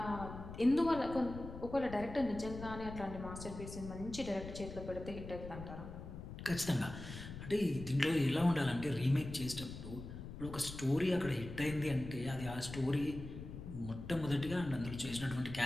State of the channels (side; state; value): left; noise; rumble, 10 dB below the sound